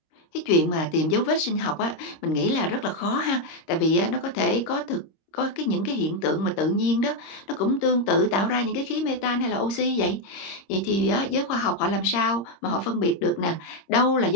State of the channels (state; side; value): late; right; 26 ms